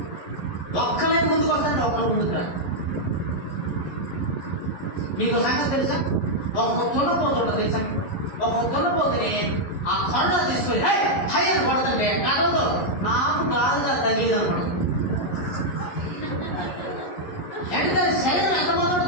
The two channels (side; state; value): right; late; 11 ms